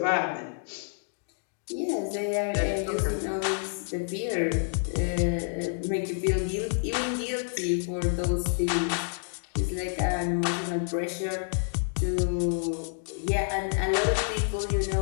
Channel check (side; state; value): right; silent; digital silence